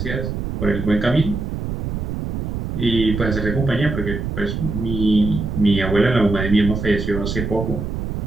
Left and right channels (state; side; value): noise; right; rumble, 3 dB below the sound